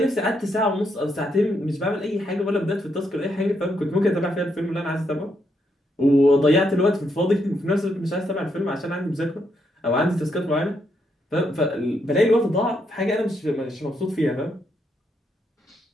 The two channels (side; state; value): both; normal; correlation 0.78